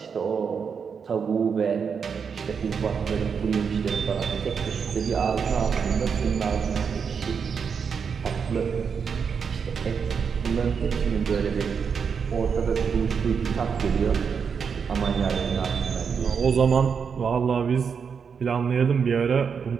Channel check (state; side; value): quieter; left; 6.3 dB